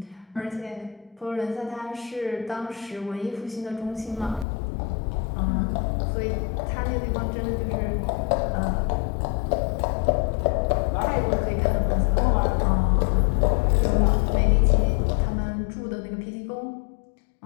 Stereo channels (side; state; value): right; drops out; at 4.5 s